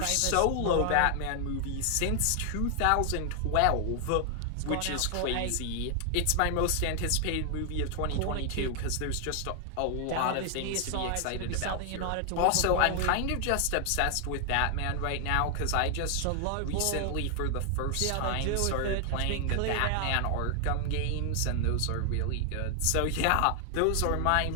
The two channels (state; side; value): different; both; correlation 0.00